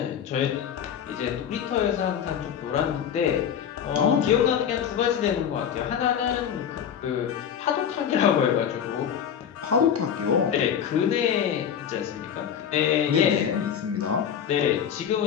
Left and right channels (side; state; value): right; quieter; 8.5 dB